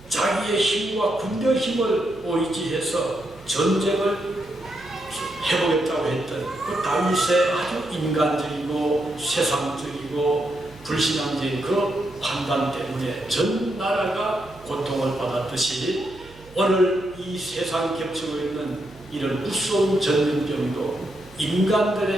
자기의 힘과 군대의 힘을 의지해서 전쟁을 해보겠다고 했던 그 다윗의 아주 인간적이고 세상적이고 불신앙적인 그 판단 때문에 전 나라가 고통을 받았듯이 오늘 이 세상 겹치고 있는 이런 무서운 전염병도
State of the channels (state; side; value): noise; right; hum, 23 dB below the sound